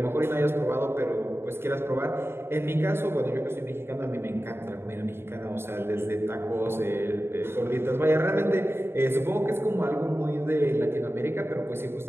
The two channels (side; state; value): left; late; 0.11 ms